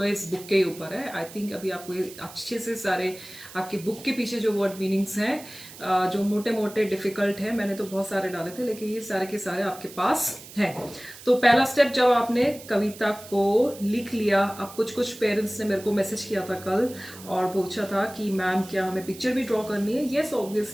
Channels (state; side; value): noise; right; hiss, 17 dB below the sound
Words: इस बुक के ऊपर है। आई थिंक अभी आपको ये अच्छे से सारे आपके बुक के पीछे जो वर्ड मीनिंग्स हैं जो मोटे मोटे डिफिकल्ट है, मैंने तो बहुत सारे डाले थे लेकिन ये सारे के सारे आपके पास हैं। तो पहला स्टेप, जब आपने कविता को लिख लिया, अब कुछ पेरेंट्स ने मेरे को मैसेज किया था कल और पूछा था कि मैम क्या हमें पिक्चर भी ड्रॉ करनी है। Yes